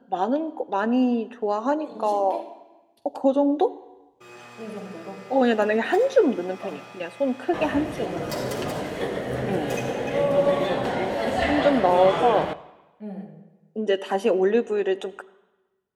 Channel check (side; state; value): both; identical; correlation 1.00